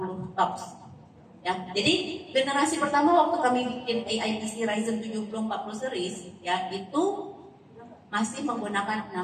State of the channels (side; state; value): both; identical; correlation 1.00